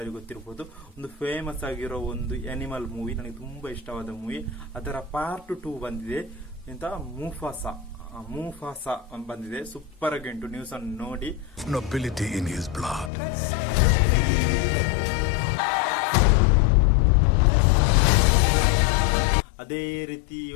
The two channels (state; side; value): drops out; right; at 13.1 s